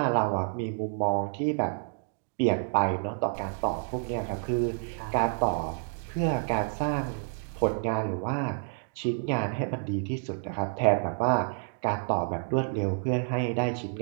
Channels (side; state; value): left; silent; digital silence